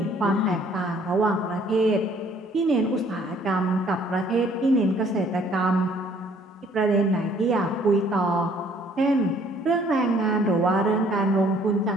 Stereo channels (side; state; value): both; normal; correlation 0.60